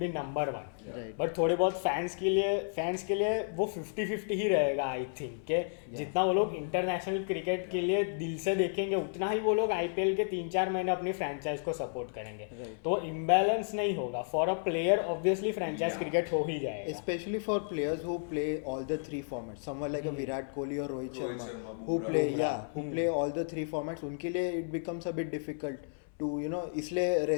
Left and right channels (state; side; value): silent; right; 56 dB below the other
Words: be number 1. Right. But थोड़े बहुत फैंस के लिए वो 50-50 ही रहेगा आई थिंक कि जितना वो लोग इंटरनेशनल क्रिकेट के लिए दिल से देखेंगे उतना ही वो लोग IPL के 3-4 महीने अपनी फ्रेंचाइज को सपोर्ट करेंगे. Right. तो इम्बैलेंस नहीं होगा. For a player obviously franchise Yeah. Cricket हो ही जाएगा. Especially for players who play all the 3 formats, someone like a Virat Kohli or Rohit Rohit Sharma, Sharma, who Bumrah. who play all the 3 formats, उनके लिए it becomes a bit difficult to इसलिए